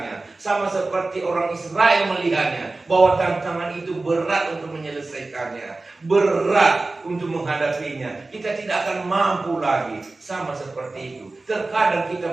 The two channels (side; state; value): left; quieter; 3.3 dB